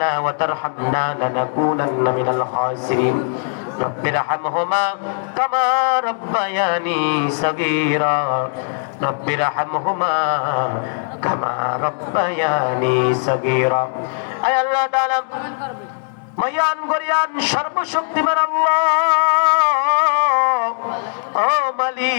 وترحمنا لنكونن من الخاسرين رب ارحمهما كما ربياني صغيرا رب ارحمهما كما ربياني صغيرا أي الله تعالى মহান গরিয়ান সর্বশক্তিমান আল্লাহ ও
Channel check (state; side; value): silent; right; 66 dB below the other